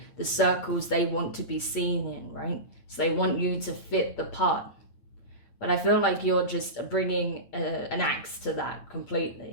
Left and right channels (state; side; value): late; right; 8.6 ms